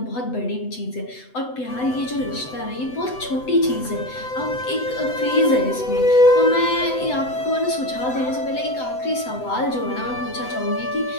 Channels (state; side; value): late; right; 7.9 ms